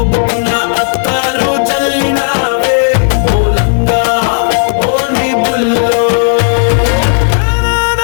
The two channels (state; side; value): silent; right; digital silence